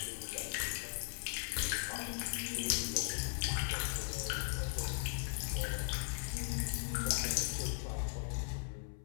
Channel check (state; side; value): silent; right; 52 dB below the other